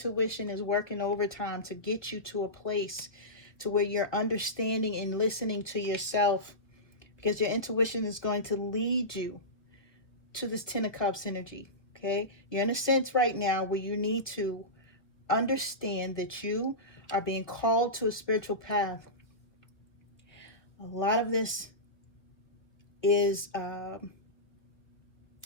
is working overtime to get you to a place to where you're understanding and listening to yourself, because your intuition is going to lead you to this Ten of Cups energy, okay? You're in a sense right now where you need to understand that you are being called to a spiritual path. A lot of this is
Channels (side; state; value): right; late; 1.1 ms